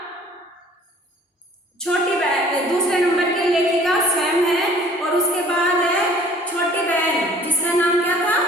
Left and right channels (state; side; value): normal; both; correlation 0.53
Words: छोटी बहन, दूसरे नंबर की लेखिका स्वयं है, और उसके बाद है छोटी बहन जिसका नाम क्या था,